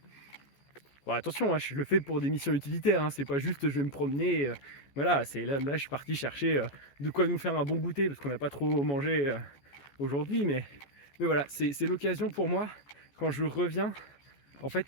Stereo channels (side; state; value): right; late; 14 ms